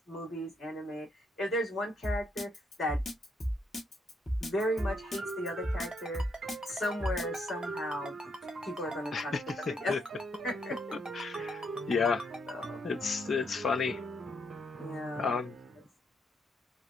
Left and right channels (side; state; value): both; normal; correlation 0.75